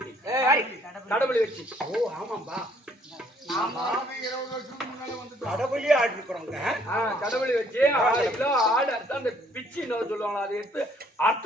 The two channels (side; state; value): both; normal; correlation 0.64